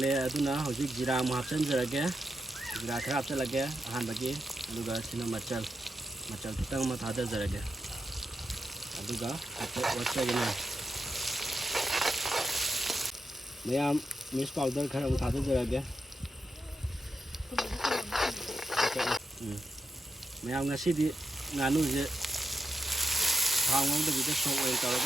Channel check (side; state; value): both; normal; correlation 0.86